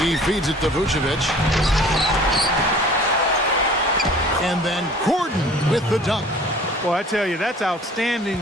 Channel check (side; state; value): both; normal; correlation 0.48